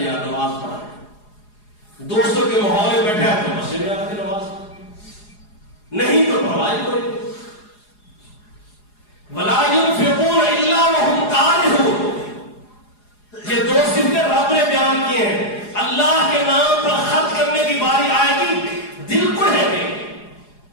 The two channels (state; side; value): late; right; 4.8 ms